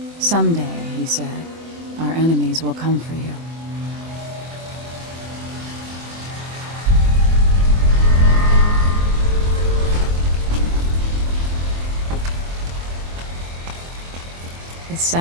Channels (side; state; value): left; late; 24 ms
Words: Someday, he said, our enemies will come for you. The